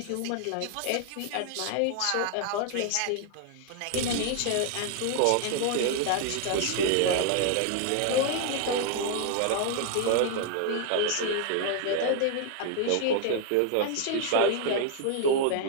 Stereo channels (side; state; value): both; different; correlation 0.00